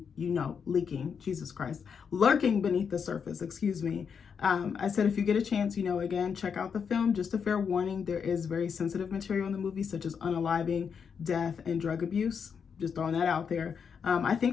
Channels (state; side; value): quieter; right; 6.6 dB